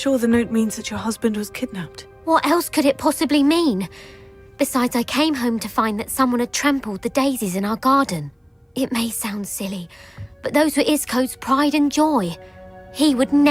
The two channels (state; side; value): identical; both; correlation 1.00